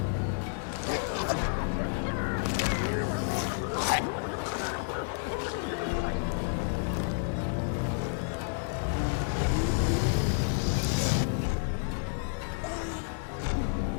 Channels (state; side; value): silent; right; digital silence